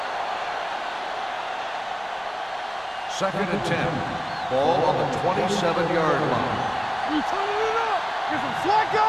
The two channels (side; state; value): both; identical; correlation 1.00